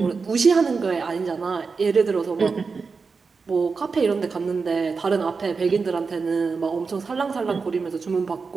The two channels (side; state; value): left; quieter; 4.8 dB